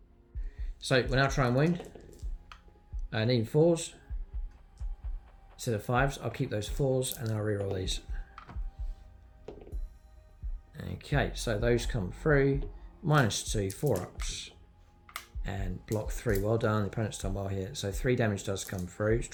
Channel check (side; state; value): both; identical; correlation 1.00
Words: So we'll now try and wound. Needing 4s. Instead of 5s, I'll keep those 4s and then I'll reroll these. Okay, so those come through. -2, 4-ups. And block 3. Well done, the opponent's done well here. So 3 damage does come through. Let's